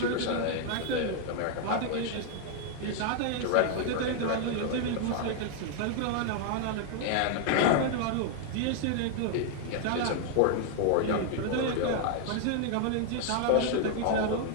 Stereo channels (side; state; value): both; different; correlation 0.00